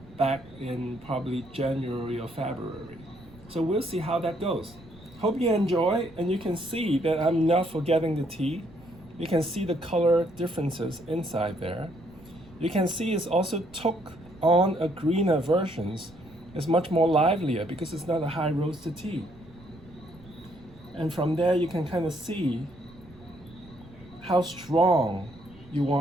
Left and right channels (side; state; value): right; noise; rumble, 23 dB below the sound